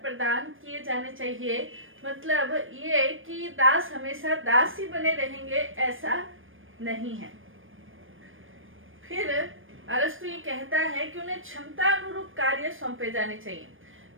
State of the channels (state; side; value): late; left; 0.59 ms